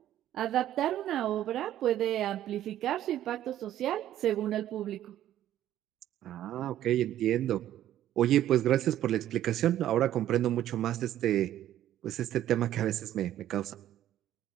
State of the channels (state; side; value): quieter; left; 12.3 dB